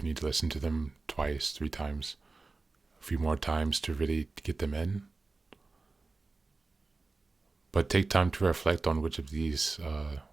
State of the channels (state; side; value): quieter; left; 3.7 dB